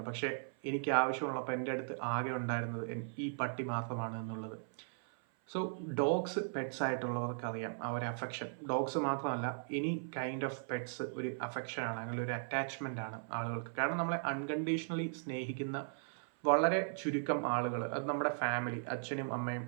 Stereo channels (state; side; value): silent; left; 53 dB below the other